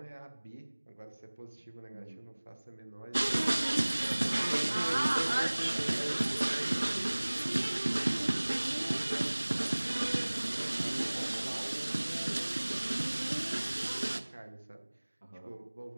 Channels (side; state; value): both; inverted; correlation -1.00